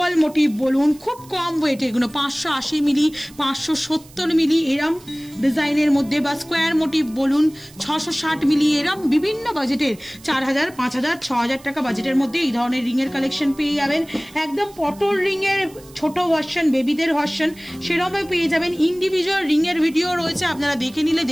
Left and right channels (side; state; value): right; noise; hiss, 23 dB below the sound